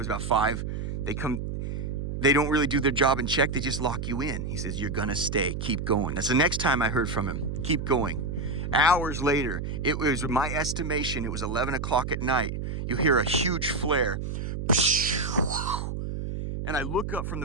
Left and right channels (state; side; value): noise; right; hum, 4 dB below the sound